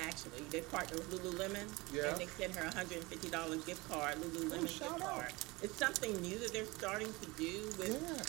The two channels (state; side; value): quieter; left; 23.3 dB